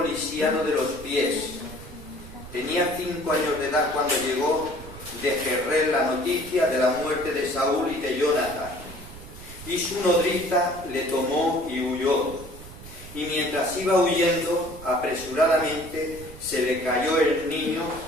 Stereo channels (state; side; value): noise; right; rumble, 16 dB below the sound